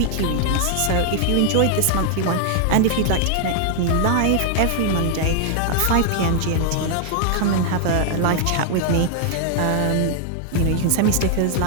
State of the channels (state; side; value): different; both; correlation 0.00